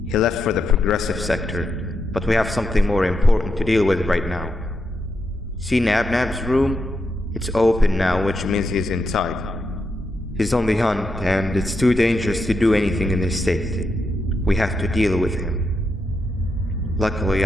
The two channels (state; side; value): normal; both; correlation 0.84